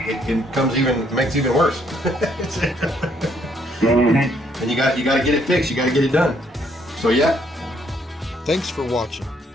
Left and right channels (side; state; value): both; normal; correlation 0.69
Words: makes it even worse. And you got to get it fixed. You got to get it done. So yeah. Thanks for watching.